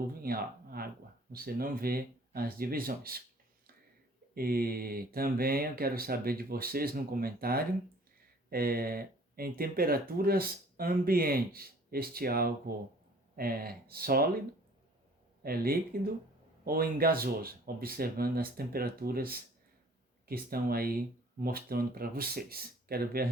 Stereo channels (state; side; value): normal; both; correlation 0.53